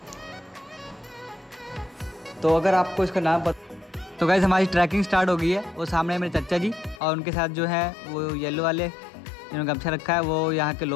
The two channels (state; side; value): drops out; right; at 7.0 s